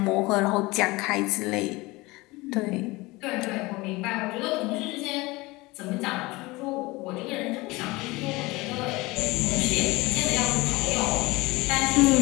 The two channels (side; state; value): right; quieter; 22.2 dB